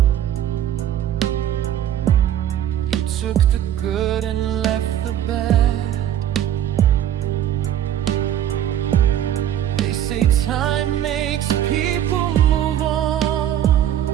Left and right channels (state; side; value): quieter; left; 10.9 dB